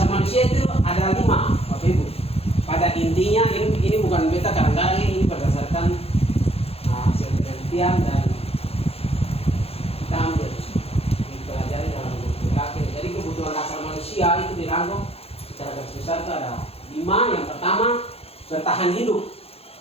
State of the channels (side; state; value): right; late; 0.29 ms